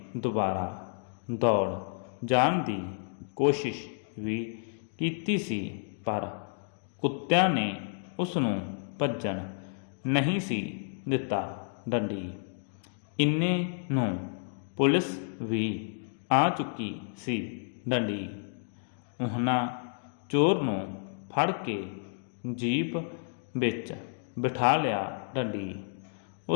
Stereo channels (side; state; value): right; silent; digital silence